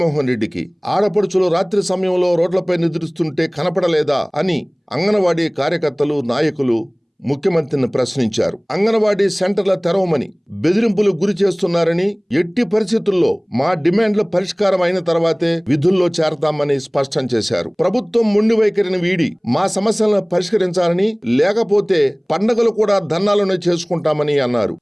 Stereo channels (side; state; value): both; identical; correlation 1.00